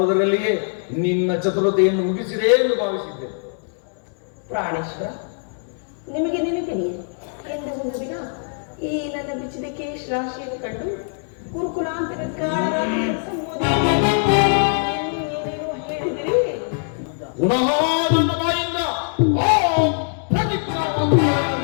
ನಿನ್ನ ಚತುರತೆಯನ್ನು ಮುಗಿಸಿದೆ ಎಂದು ಭಾವಿಸಿದ್ದೆ. ಪ್ರಾಣೇಶ್ವರ, ನಿಮಗೆ ನೆನಪಿದೆಯೇ ಎಂದು ಒಂದು ದಿನ ಈ ನನ್ನ ಬಿಚ್ಚಿದ ಕೇಶ್ ರಾಶಿಯನ್ನು ಕಂಡು ಕುರುಕುಲಾಂತರ ಏನೇನೋ ಹೇಳಿದಿರಿ. ಪುನಃ ನನ್ನ ಬಾಯಿಂದ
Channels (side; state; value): right; silent; 61 dB below the other